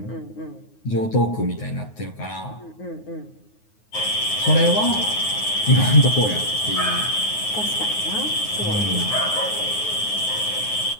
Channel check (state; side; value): late; right; 9.5 ms